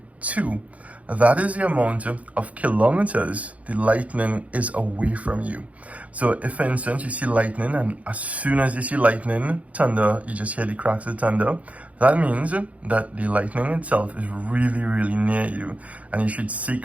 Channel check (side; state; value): left; late; 0.067 ms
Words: 2. That is the amount of kilometers the lightning is away from you. So if, for instance, you see lightning, and as soon as you see lightning, thunder, you just hear the cracks of thunder, that means that the lightning itself is really, really near you. And you should